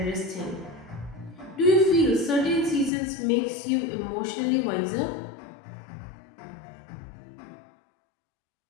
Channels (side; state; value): right; drops out; at 2.9 s